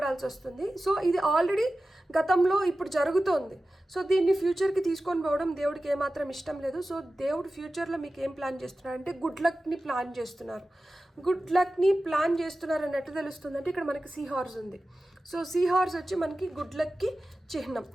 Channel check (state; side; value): normal; both; correlation 0.95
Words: వస్తుంది. సో ఇది ఆల్రెడీ గతంలో ఇప్పుడు జరుగుతోంది. సో దీన్ని ఫ్యూచర్కి తీసుకొని పోవడం దేవుడికి ఏమాత్రం ఇష్టం లేదు. సో దేవుడు ఫ్యూచర్లో మీకు ఏం ప్లాన్ చేస్తున్నారు అంటే గుడ్ లక్ని ప్లాన్ చేస్తున్నారు. గుడ్ లక్ని ప్లాన్ చేస్తున్నారు అని ఎట్లా తెలుస్తుంది అంటే ఇక్కడ మనకి సీ హార్స్ ఉంది. సో సీ హార్స్ వచ్చి మనకి గుడ్ లక్కి చిహ్నం.